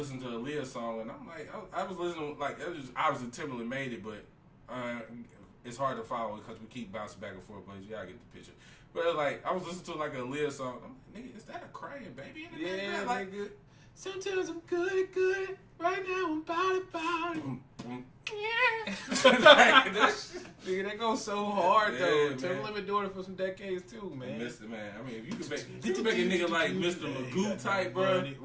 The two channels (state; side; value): identical; both; correlation 1.00